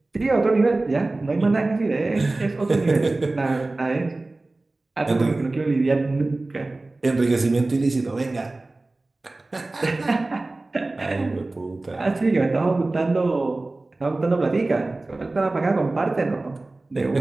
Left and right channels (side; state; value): left; quieter; 3.1 dB